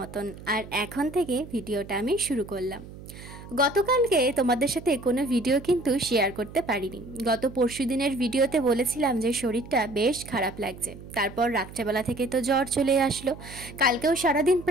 और एखन थेके भिडियोटा आमी शुरू करलाम। गतकालके तोमादेर साथे कोनो भिडियो किन्तु शेयर करते पारिनी। गत परशु दिनेर भिडियोते बोलेछिलाम जे शरीरटा बेश खाराप लागছে। तारपर रात्रेबेला थेके तो ज्वर चले आसलो। कालकेও सारादिन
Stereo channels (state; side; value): noise; right; hum, 15 dB below the sound